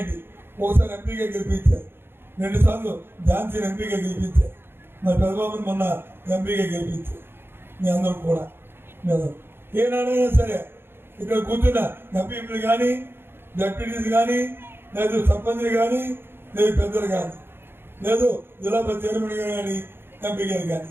ఒకసారి ఎంపీగా గెలిపించారు, 2 సార్లు ఝాన్సీని ఎంపీగా గెలిపించారు, మరి పెద్దబాబుని మొన్న ఎంపీగా గెలిపించారు. మీ అందరూ కూడా ఏనాడైనా సరే ఇక్కడ కూర్చున్న ఎంపీలు కానీ, డెప్యూటీస్ కానీ, లేదు సర్పంచ్లు కానీ, లేదు పెద్దలు కానీ, లేదు జిల్లా పరిషత్ చైర్మన్ కానీ, ఎంపీ గారు కానీ,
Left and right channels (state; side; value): late; left; 0.11 ms